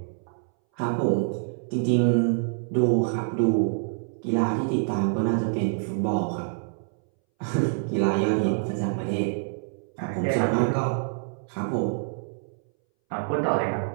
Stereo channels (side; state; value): left; silent; 61 dB below the other